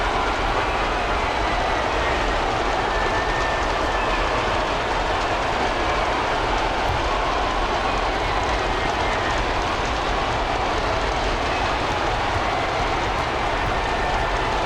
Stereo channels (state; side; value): identical; both; correlation 1.00